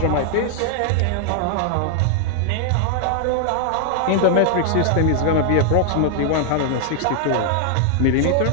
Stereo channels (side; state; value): both; different; correlation 0.00